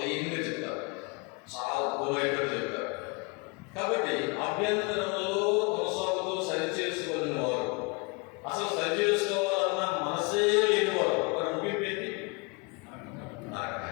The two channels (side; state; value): right; quieter; 30.0 dB